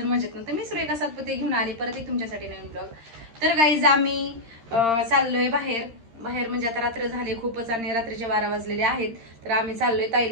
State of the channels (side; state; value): left; late; 13 ms